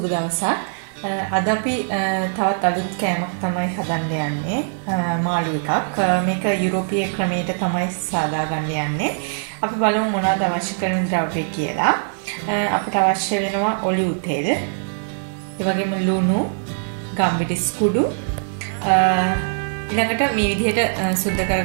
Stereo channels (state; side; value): silent; left; digital silence